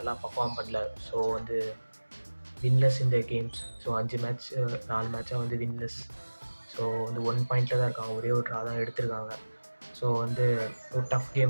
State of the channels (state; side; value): inverted; both; correlation -1.00